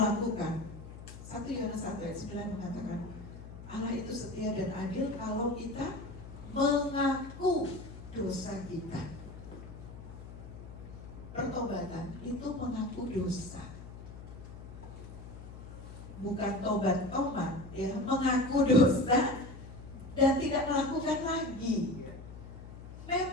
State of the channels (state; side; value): noise; left; hum, 13 dB below the sound